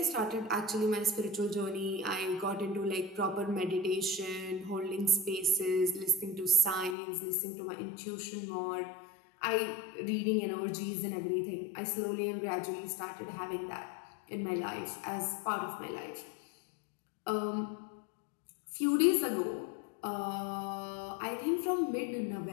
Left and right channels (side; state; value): right; drops out; at 7.0 s